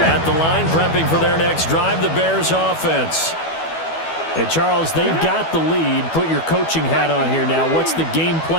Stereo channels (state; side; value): late; right; 12 ms